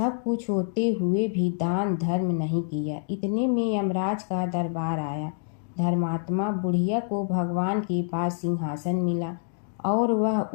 कुछ होते हुए भी दान धर्म नहीं किया। इतने में यमराज का दरबार आया। धर्मात्मा बुढ़िया को भगवान के पास सिंहासन मिला और वह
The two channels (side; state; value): right; silent; digital silence